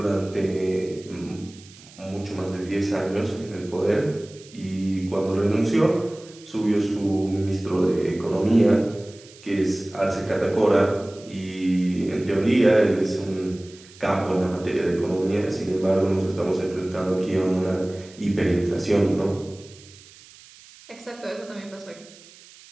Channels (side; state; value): right; noise; hiss, 22 dB below the sound